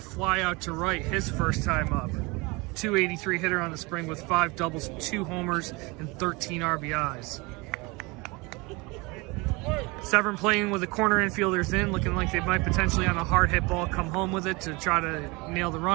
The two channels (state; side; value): quieter; left; 25.6 dB